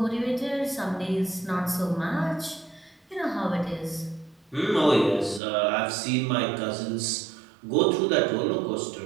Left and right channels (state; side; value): drops out; left; at 5.4 s